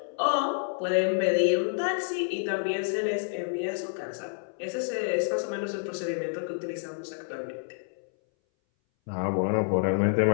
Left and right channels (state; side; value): silent; right; 59 dB below the other